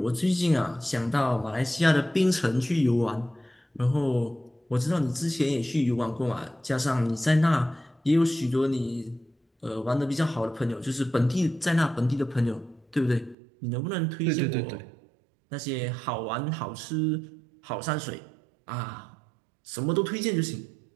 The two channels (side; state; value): left; drops out; at 13.4 s